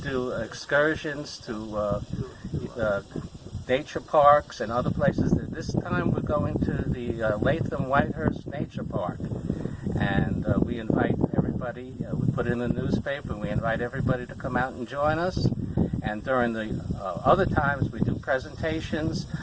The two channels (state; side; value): identical; both; correlation 1.00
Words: do excursions to nature parks and other places. This time we're going to the Latham-Whitehurst Nature Park, and we invite everybody. We put it in the newspaper, and we invite everybody to come out and join us. And during the other times, we do presentations